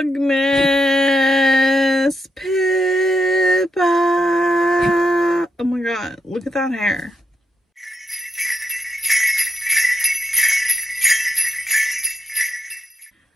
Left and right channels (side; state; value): both; normal; correlation 0.81